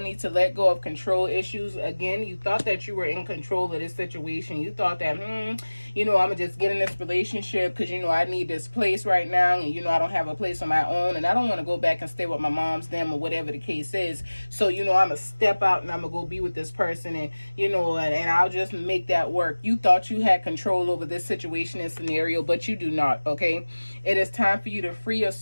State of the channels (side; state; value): both; inverted; correlation -1.00